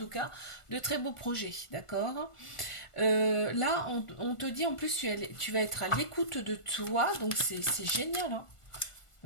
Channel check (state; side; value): late; right; 1.4 ms